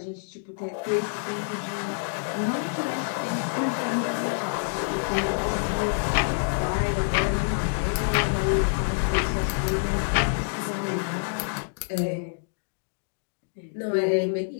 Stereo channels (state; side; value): silent; right; digital silence